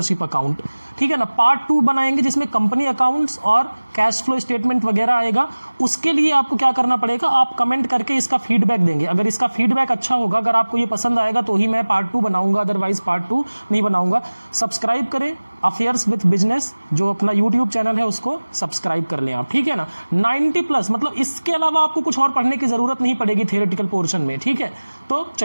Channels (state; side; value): inverted; both; correlation -1.00